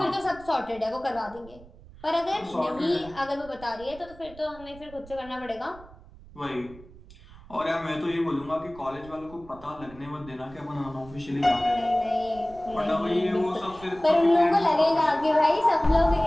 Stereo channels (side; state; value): right; noise; rumble, 20 dB below the sound